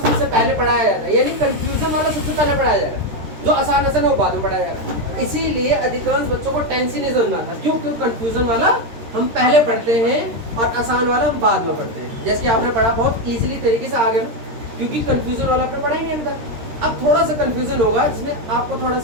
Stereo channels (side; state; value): left; late; 13 ms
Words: पहले पढ़ाया जाता है, यानी कंफ्यूजन वाला सबसे पहले पढ़ाया जाएगा, जो आसान आसान है वो बाद में पढ़ाया जाएगा। इसीलिए अधिकांश बच्चों को टेंस ही नहीं समझ में आता, क्यों? क्योंकि कंफ्यूजन वाला हम पहले पढ़ते हैं और आसान वाला हम बाद में पढ़ते हैं। जैसे कि आपने पढ़ा बहुत इजीली तरीके से आ गया ना, क्योंकि कंफ्यूजन वाला आपने पढ़ा ही नहीं अभी तक। अब थोड़ा सा कंफ्यूजन होगा जिसमें आपको थोड़ा